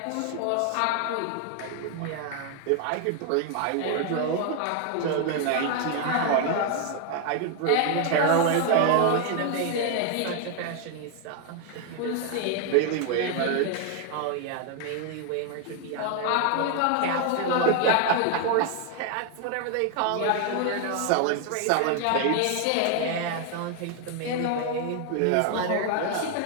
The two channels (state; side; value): different; both; correlation 0.00